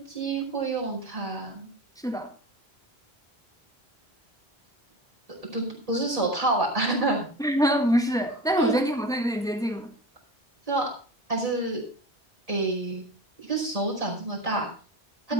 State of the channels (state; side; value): normal; both; correlation 0.30